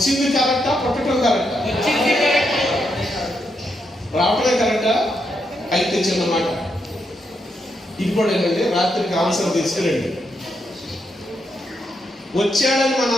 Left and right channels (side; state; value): both; normal; correlation 0.81